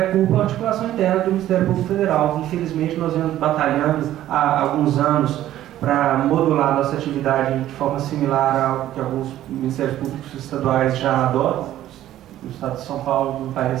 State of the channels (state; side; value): quieter; left; 13.1 dB